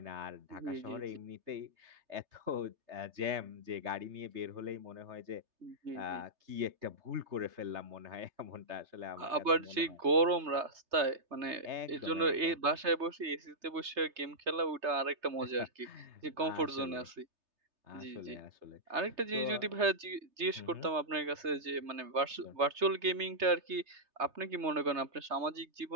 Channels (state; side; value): late; left; 3.3 ms